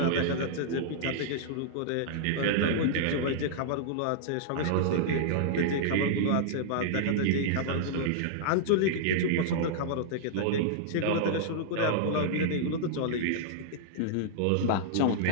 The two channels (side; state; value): both; different; correlation -0.01